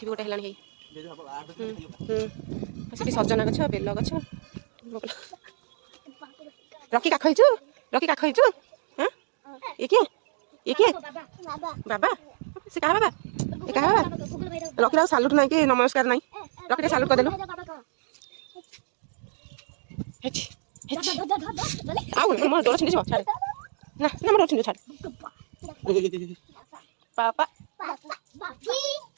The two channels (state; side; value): silent; left; digital silence